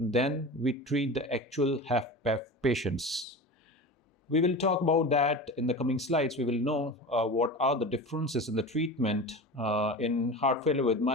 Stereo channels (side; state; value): both; normal; correlation 0.30